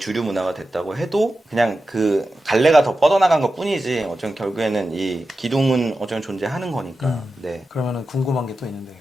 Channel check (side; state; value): both; normal; correlation 0.92